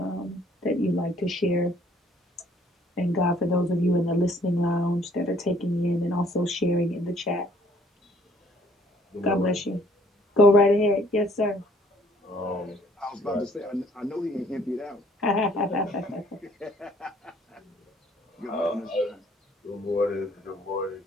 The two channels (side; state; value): both; normal; correlation 0.61